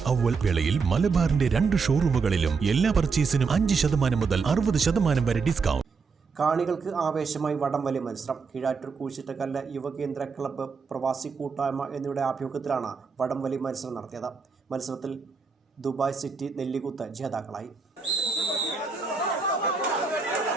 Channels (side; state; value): left; quieter; 5.0 dB